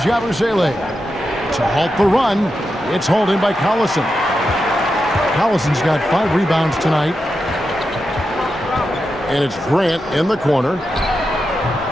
Yabusele. To halt the run, it's holding by Collison. Collison's got 5 rebounds tonight. And it's Grant in the corner.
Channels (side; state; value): both; normal; correlation 0.88